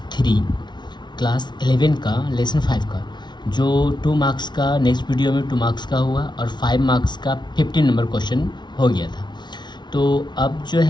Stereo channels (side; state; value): right; late; 0.21 ms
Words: 3 class 11 का लेसन 5 का जो 2 मार्क्स का नेक्स्ट वीडियो में 2 मार्क्स का हुआ और 5 मार्क्स का 15 नंबर क्वेश्चन हो गया था। तो अब जो